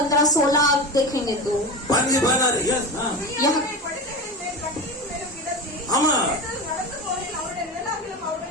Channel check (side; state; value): both; normal; correlation 0.25